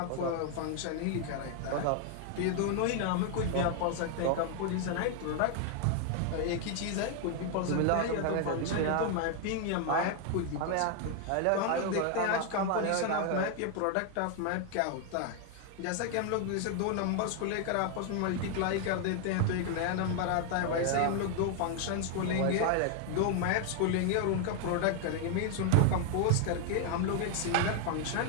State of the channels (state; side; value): different; both; correlation 0.00